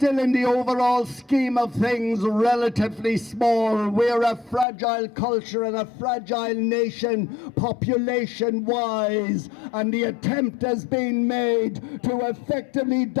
in the overall scheme of things relatively small. We're a fragile culture and a fragile nation, population-wise, and the attempt has been made to effectively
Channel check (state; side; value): drops out; right; at 4.7 s